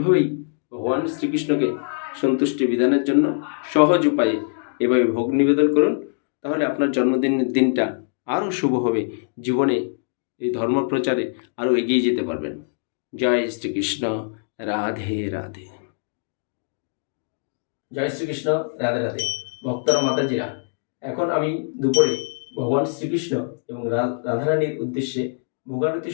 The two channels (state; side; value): silent; right; digital silence